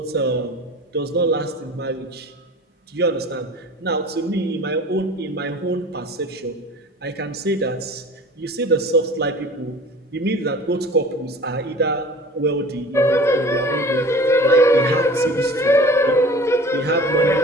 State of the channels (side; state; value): both; normal; correlation 0.42